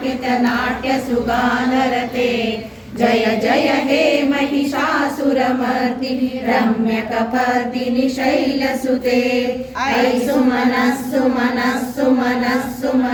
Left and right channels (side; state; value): both; identical; correlation 1.00